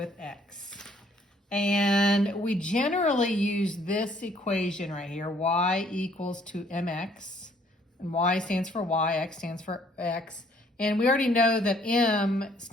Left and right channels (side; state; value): both; normal; correlation 0.63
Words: x. And we generally use this equation right here, y equals to mx, and y stands for y, x stands for x. And we already know that m